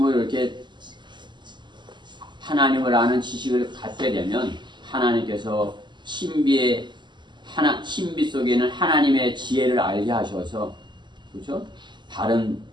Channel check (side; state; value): left; late; 0.22 ms